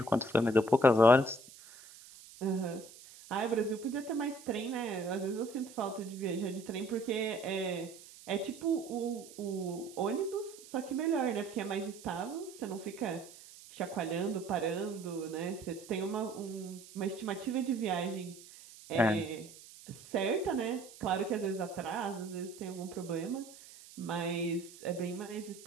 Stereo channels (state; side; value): noise; right; hiss, 19 dB below the sound